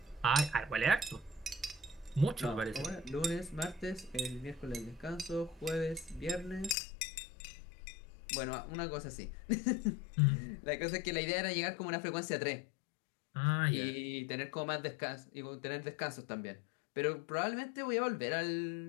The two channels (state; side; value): drops out; right; at 6.8 s